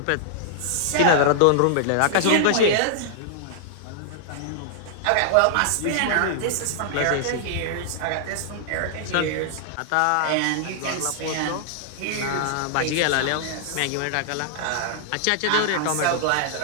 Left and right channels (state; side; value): different; both; correlation -0.01